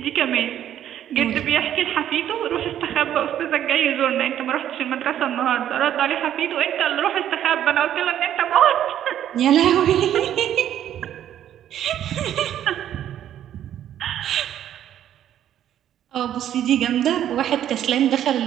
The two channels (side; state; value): left; quieter; 10.9 dB